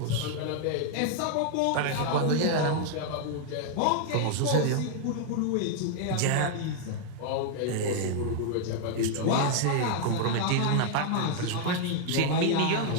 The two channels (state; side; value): different; both; correlation 0.00